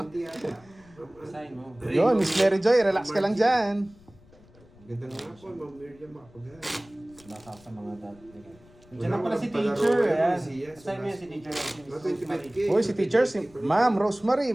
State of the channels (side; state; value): left; noise; rumble, 26 dB below the sound